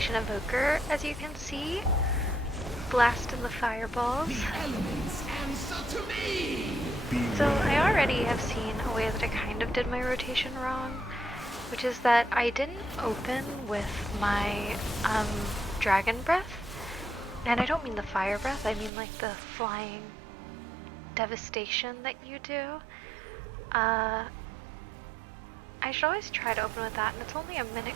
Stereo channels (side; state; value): left; drops out; at 18.9 s